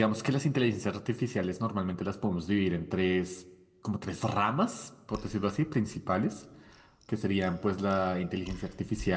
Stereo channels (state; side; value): identical; both; correlation 1.00